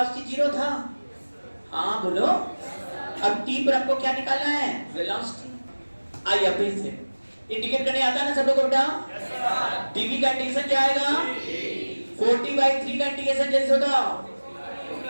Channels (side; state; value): both; inverted; correlation -1.00